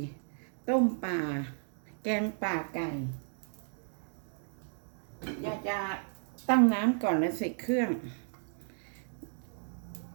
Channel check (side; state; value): left; silent; digital silence